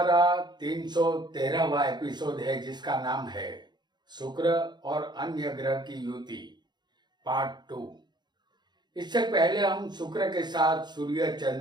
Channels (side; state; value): left; late; 0.21 ms